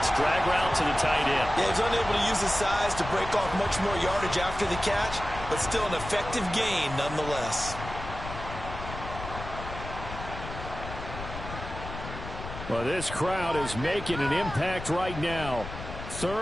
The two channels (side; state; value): left; noise; rumble, 10 dB below the sound